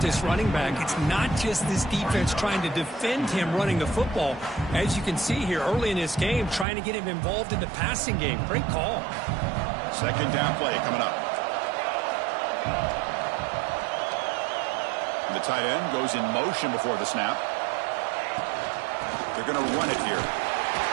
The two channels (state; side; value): drops out; left; at 6.7 s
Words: this running back, it's not just this defense trying to defend him running the football. As you can see here early in this game, trying to get him involved in the passing game. Great call. Second down play coming up. The tight end goes in motion before the snap. They're going to run it here.